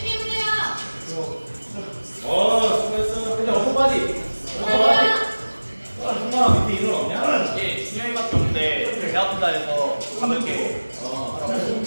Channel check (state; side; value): inverted; both; correlation -1.00